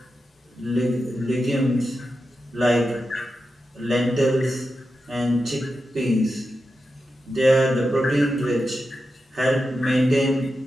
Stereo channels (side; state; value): both; normal; correlation 0.90